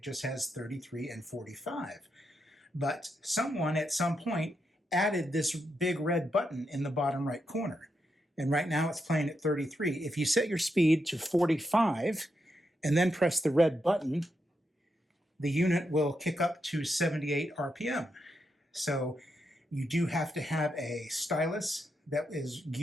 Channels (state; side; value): normal; both; correlation 0.83